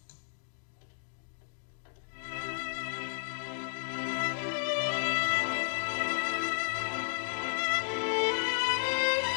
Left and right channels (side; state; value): right; silent; digital silence